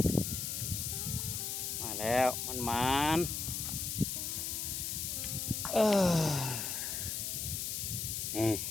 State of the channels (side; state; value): left; noise; hiss, 2 dB below the sound